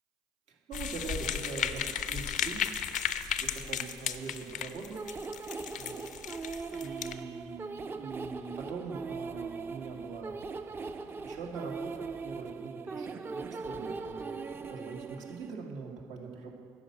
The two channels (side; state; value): both; normal; correlation 0.54